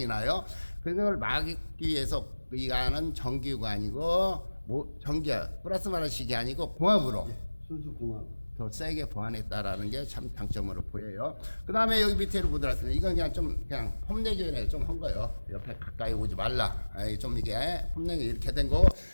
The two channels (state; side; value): inverted; both; correlation -1.00